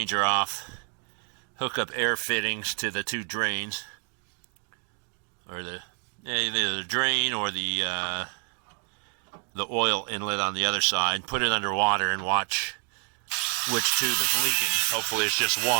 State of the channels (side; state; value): left; quieter; 38.3 dB